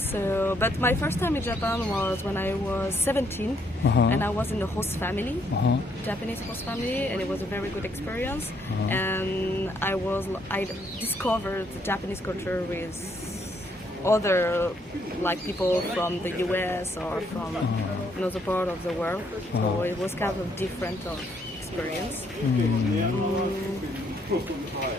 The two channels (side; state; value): both; normal; correlation 0.71